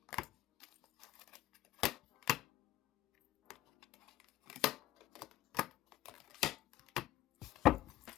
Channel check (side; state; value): right; quieter; 14.8 dB